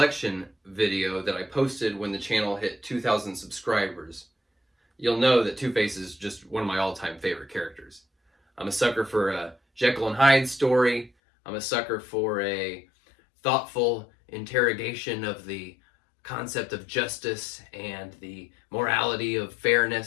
video that I posted when the channel hit 2,000 subscribers, you'll know that Two-Face is just one of my all-time favorite characters. I'm a sucker for a Jekyll and Hyde story. I'm a sucker for a thoughtful interrogation of the concept of justice and the morality of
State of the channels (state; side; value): drops out; right; at 11.1 s